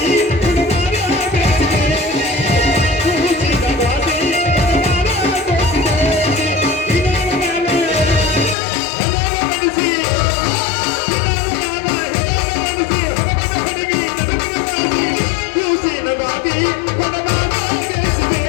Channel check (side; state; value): right; drops out; at 8.6 s